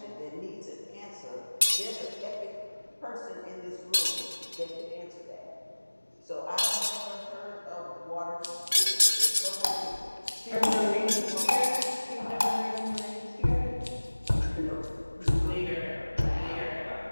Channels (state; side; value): inverted; both; correlation -1.00